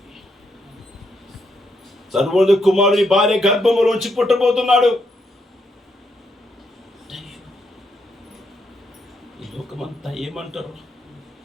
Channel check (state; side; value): normal; both; correlation 0.77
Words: సర్వోన్నత కుమారుడు నీ భార్య గర్భములోంచి పుట్టబోతున్నాడు. ఈ లోకమంతా ఏమంటారు?